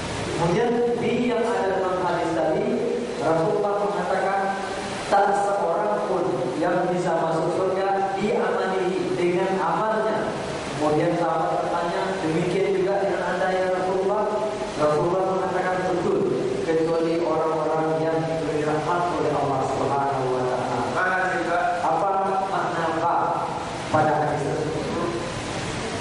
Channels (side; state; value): both; identical; correlation 1.00